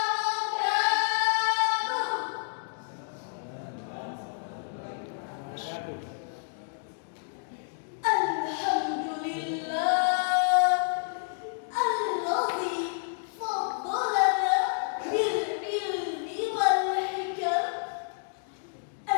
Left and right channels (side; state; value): right; silent; digital silence